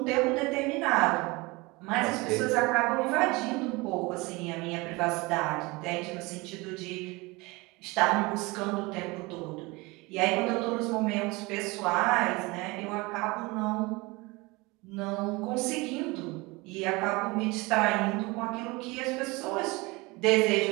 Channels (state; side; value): quieter; left; 24.2 dB